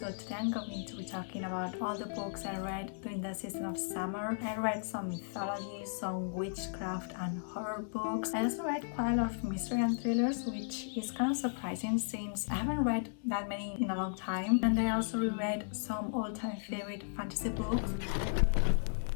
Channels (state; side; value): silent; right; digital silence